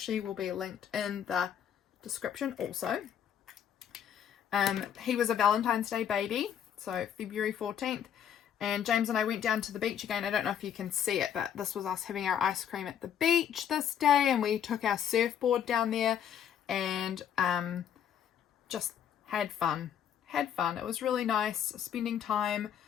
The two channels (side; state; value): right; quieter; 9.2 dB